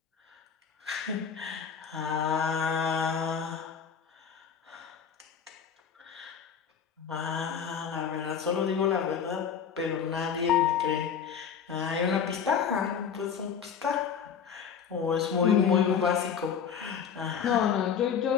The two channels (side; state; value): right; quieter; 7.2 dB